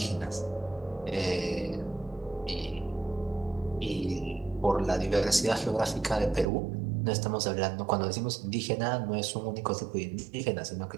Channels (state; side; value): drops out; left; at 6.5 s